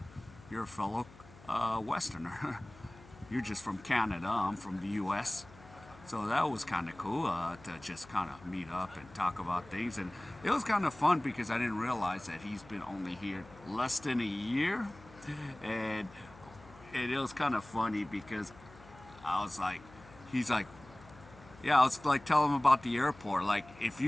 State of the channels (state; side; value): noise; left; hum, 21 dB below the sound